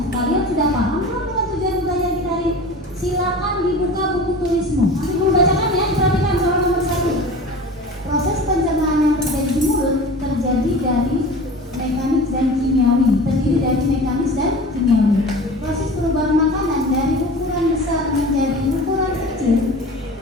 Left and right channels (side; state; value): both; normal; correlation 0.37